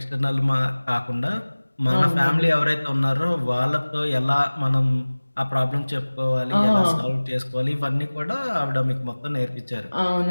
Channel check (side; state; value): both; inverted; correlation -1.00